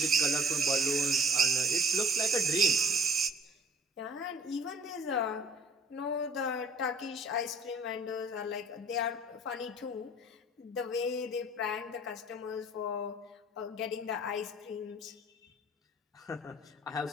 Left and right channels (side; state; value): both; normal; correlation 0.51